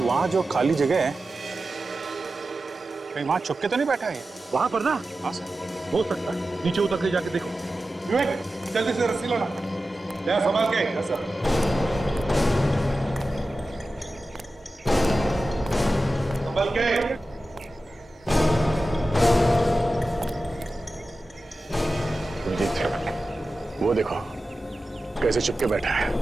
जो खाली जगह है, कहीं वहां छुप के तो नहीं बैठा है? वहां पर ना? हाँ सर, हो सकता है। नीचे उतर के जाके देखो। विवेक, जल्दी से रस्सी लाना। ले संभाल के। Yes sir. संभाल के। अभिजीत, वो देखो कैसे चिपके बैठा है।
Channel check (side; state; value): both; normal; correlation 0.94